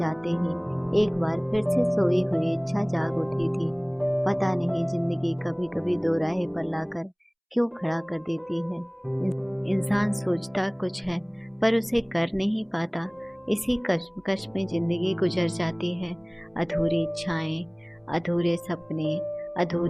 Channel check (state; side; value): identical; both; correlation 1.00